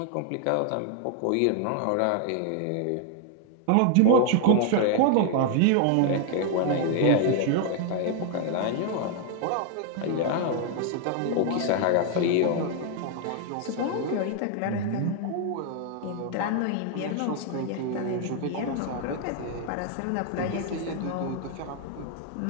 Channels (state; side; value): different; both; correlation 0.00